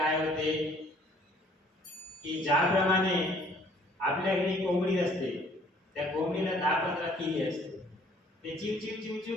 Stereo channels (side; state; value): both; normal; correlation 0.58